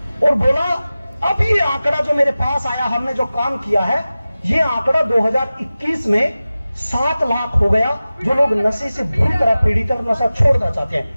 और बोला अब ये आंकड़ा जो मेरे पास आया, हमने जो काम किया है, ये आंकड़ा 2021 में 7 लाख हो गया, जो लोग नशे से बुरी तरह पीड़ित और नशा छोड़ना चाहते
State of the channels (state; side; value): inverted; both; correlation -0.96